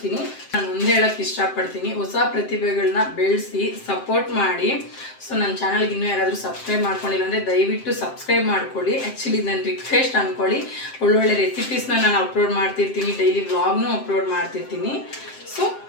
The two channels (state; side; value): late; right; 7.6 ms